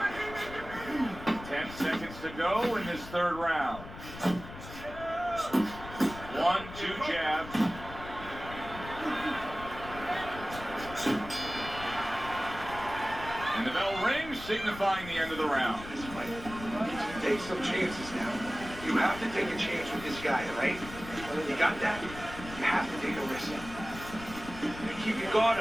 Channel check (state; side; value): noise; left; rumble, 13 dB below the sound